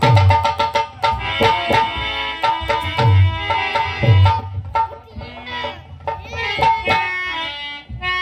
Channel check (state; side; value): identical; both; correlation 1.00